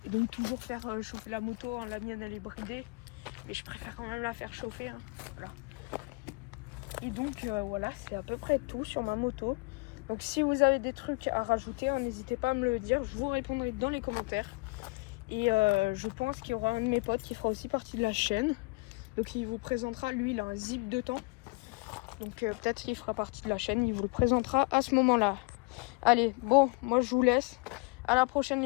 Et donc toujours faire chauffer la moto, hein. La mienne elle est bridée, mais je préfère quand même la faire chauffer, hein. Voilà. Et donc voilà, c'est à peu près tout sur ma moto. Donc si vous avez des trucs à rajouter, hein, n'hésitez pas à me le dire, je vous répondrai dans les commentaires. Et je pense qu'il y aura un de mes potes qui fera aussi partie de la chaîne. Donc il vous présentera, lui il a un zip de temps. Donc peut-être qu'il fera partie de la chaîne, il vous le présentera à ce moment-là. Allez, bon, moi je vous laisse. À la prochaine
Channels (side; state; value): right; quieter; 28.5 dB